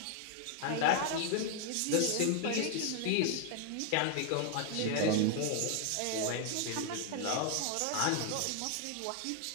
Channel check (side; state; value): both; different; correlation 0.00